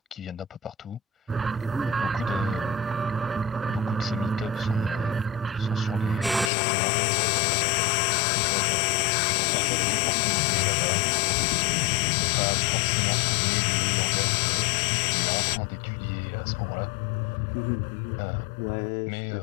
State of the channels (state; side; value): drops out; right; at 6.5 s